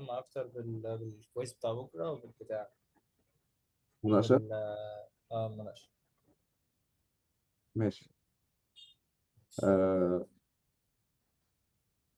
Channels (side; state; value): both; identical; correlation 1.00